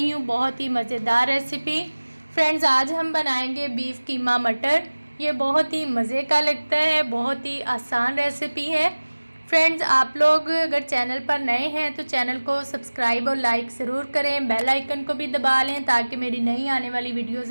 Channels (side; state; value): both; inverted; correlation -1.00